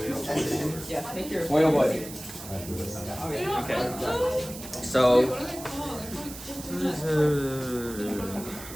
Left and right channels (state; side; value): noise; right; hiss, 13 dB below the sound